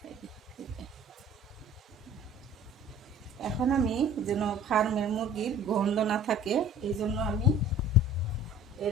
এখন আমি যেন ফার্মের মুরগির গন্ধ না থাকে এই জন্য আমি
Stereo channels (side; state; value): both; normal; correlation 0.48